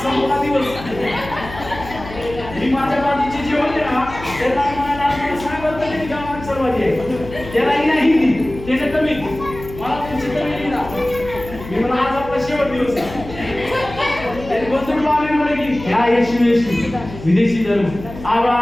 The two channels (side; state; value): left; noise; hum, 14 dB below the sound